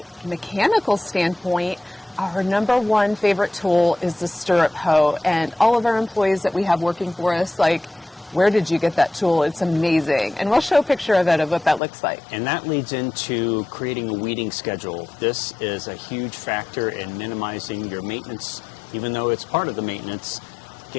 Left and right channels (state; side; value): drops out; right; at 11.8 s